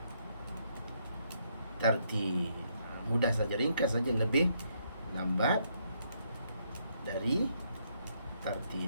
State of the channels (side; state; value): both; inverted; correlation -0.74